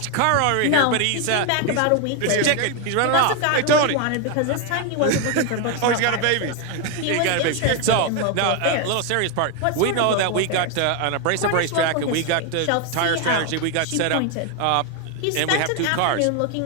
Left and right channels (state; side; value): different; both; correlation 0.01